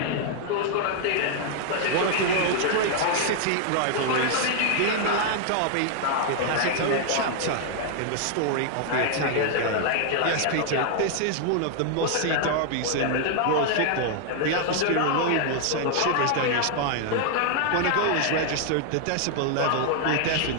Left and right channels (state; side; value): different; both; correlation 0.00